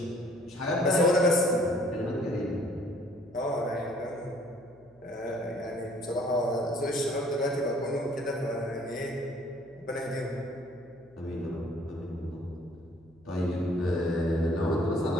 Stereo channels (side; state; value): left; noise; hum, 29 dB below the sound